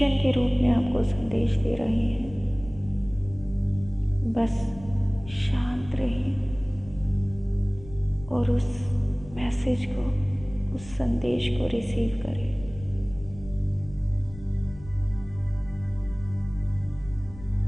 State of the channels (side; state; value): left; noise; rumble, 17 dB below the sound